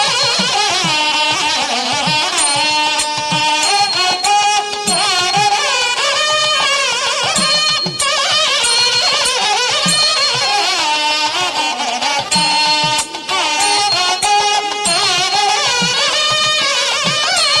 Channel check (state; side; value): identical; both; correlation 1.00